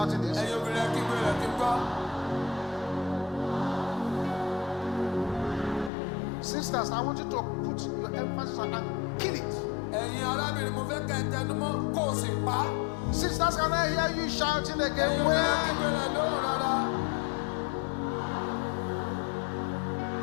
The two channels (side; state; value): right; drops out; at 5.9 s